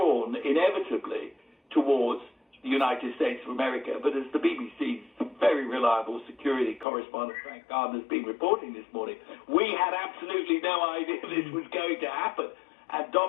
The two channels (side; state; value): right; drops out; at 6.9 s